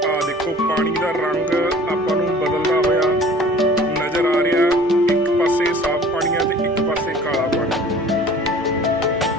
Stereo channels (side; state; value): both; normal; correlation 0.48